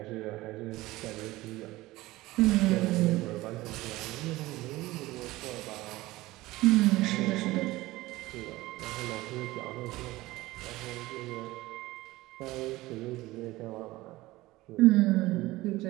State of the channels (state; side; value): quieter; left; 18.6 dB